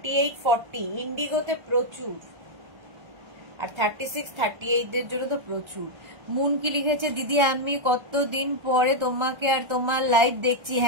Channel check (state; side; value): late; left; 1.3 ms